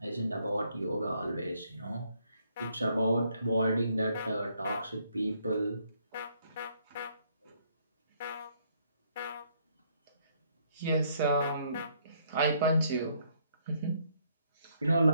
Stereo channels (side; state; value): both; inverted; correlation -0.69